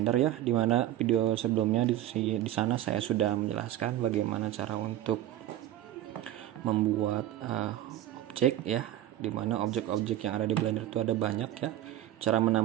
ya. Dimana video sebelumnya di sana saya sudah menjelaskan bagaimana cara untuk membuat objek ya. Dimana objek-objek yang ada di Blender itu ada banyak ya. Cara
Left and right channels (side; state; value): left; quieter; 12.9 dB